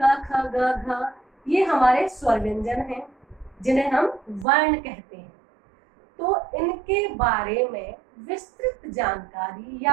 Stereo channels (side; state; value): left; drops out; at 4.5 s